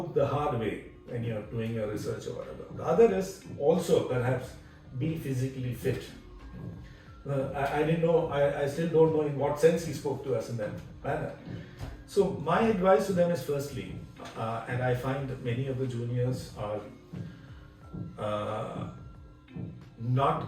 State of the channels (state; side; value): identical; both; correlation 1.00